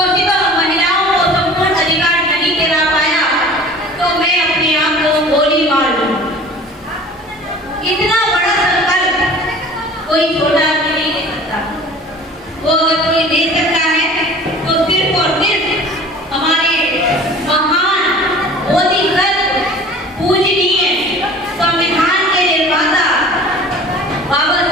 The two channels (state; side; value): normal; both; correlation 0.44